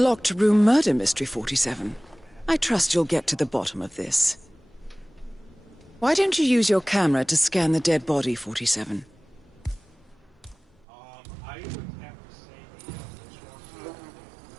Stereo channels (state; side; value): drops out; left; at 10.9 s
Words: room murder mystery, 47. I trust you'll get to the bottom of this. Why don't you use your camera to scan the dead body, 47? I would have to say the